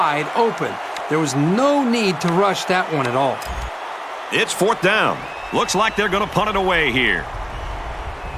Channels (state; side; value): identical; both; correlation 1.00